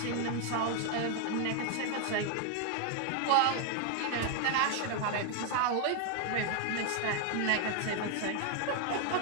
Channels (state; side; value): different; both; correlation 0.00